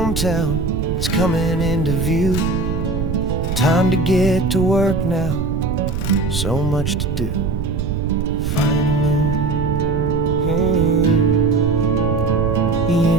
is coming into view. Time to get to work now, so much to do.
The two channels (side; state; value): right; noise; rumble, 3 dB below the sound